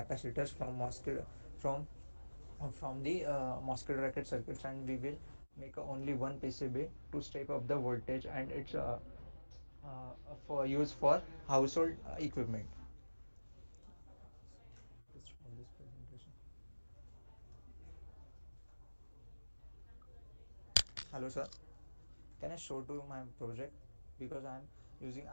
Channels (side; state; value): both; inverted; correlation -1.00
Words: from from the MOSFET bracket circuits, and we will make only one PCB to step up the voltage, and it's for use for household equipment. Let's stop this presentation. Hello, sir. Can I show to my project? Because I'm using